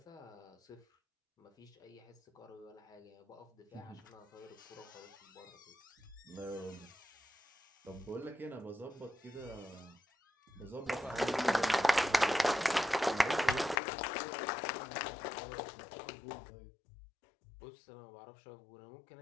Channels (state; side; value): drops out; right; at 13.8 s